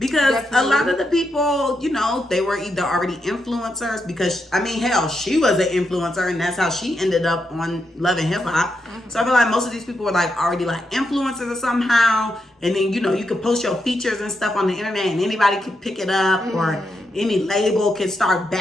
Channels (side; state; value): both; normal; correlation 0.83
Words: a lot of the people, you know, they were either already influencers because, I mean, hell, she was an influencer and that's how she ended up on Love and Hip Hop. So I feel like most of these people were like already like influencers somehow. And then, you know, you could post your features and stuff on the internet and anybody could pick it up or any label could start